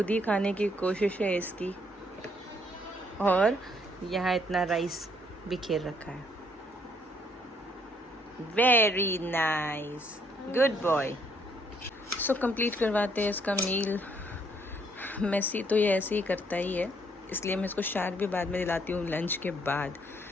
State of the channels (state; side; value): normal; both; correlation 0.68